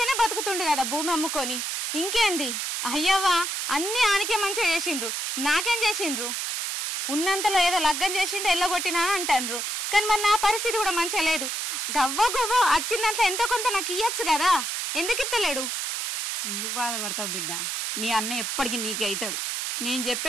బతుకుతుండు కదా భూమి అమ్ముకొని. ఇంకేంది అయ్యవ్వా, అన్ని ఆనికే మంచిగా చేసిండ్రు, నాకేం చేసిండ్రు? ఉన్నంతలో ఏదో లగ్గం చేసిండు ఎల్లగొట్టినా అంటారు. కానీ మరి నా పరిస్థితి కూడా మంచిగా లేదు. గవ్వ వచ్చిన దాంట్లో ఎంతో కొంత నాకు ఇయ్యచ్చు కదా, ఎందుకు ఇత్తలేడు? ఎందుకు బాధపడతావు బిడ్డ? నీ అన్న ఎప్పటికీ నీకే అవుతాడు. నేను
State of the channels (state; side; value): noise; right; hiss, 1 dB below the sound